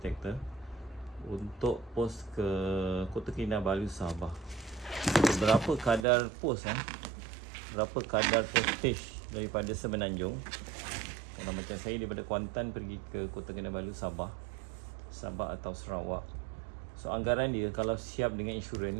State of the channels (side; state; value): left; drops out; at 6.1 s